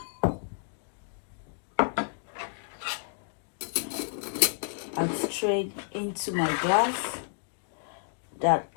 and strain into my glass that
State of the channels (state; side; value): silent; right; digital silence